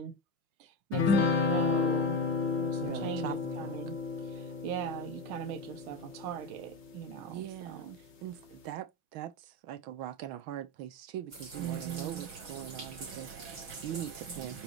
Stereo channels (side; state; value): left; late; 5.7 ms